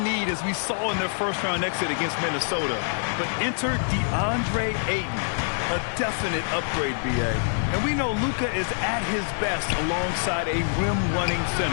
need as we saw in their first-round exit against Minnesota. But enter DeAndre Ayton, a definite upgrade, B.A. And we know Luka is at his best alongside a rim-running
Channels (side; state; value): right; silent; digital silence